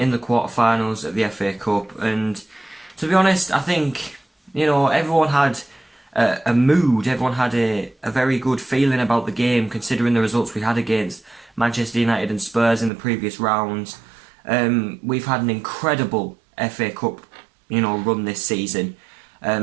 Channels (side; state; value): left; drops out; at 12.9 s